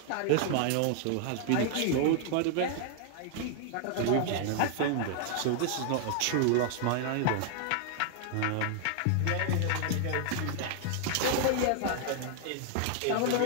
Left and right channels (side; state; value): both; different; correlation 0.00